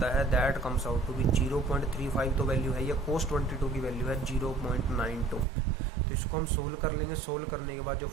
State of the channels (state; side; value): drops out; left; at 5.5 s